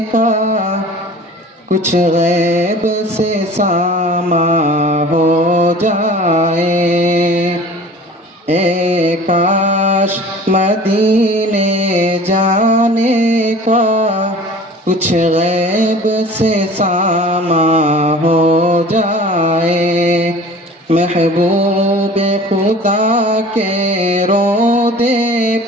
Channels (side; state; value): both; normal; correlation 0.43